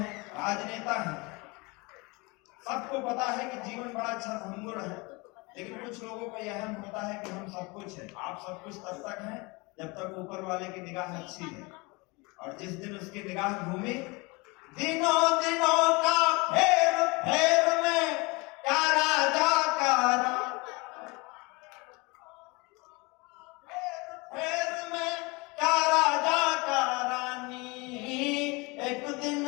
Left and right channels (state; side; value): quieter; right; 26.5 dB